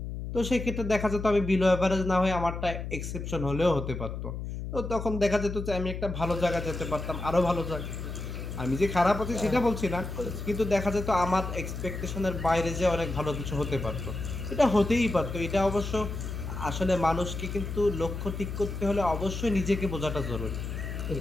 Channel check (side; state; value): left; noise; hum, 6 dB below the sound